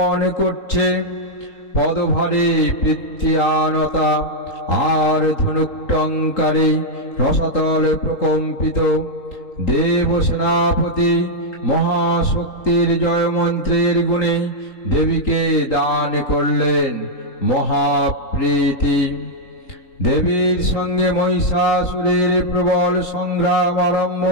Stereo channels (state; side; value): late; right; 3.8 ms